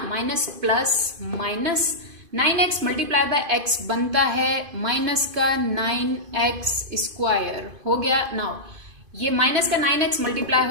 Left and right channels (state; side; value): late; left; 2.5 ms